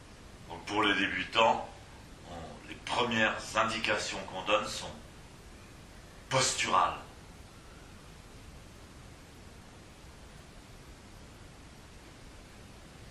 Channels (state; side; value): identical; both; correlation 1.00